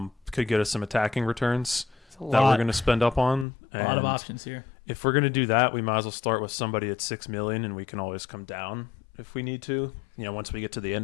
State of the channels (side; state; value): right; drops out; at 3.5 s